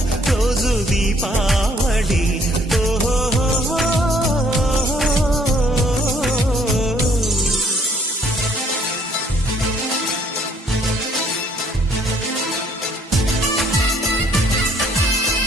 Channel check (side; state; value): both; normal; correlation 0.63